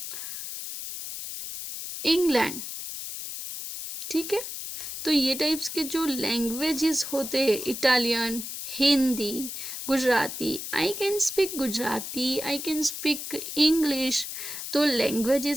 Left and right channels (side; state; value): left; noise; hiss, 7 dB below the sound